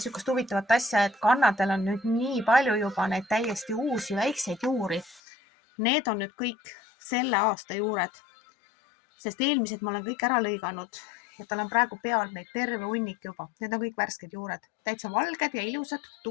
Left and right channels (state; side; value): drops out; right; at 5.2 s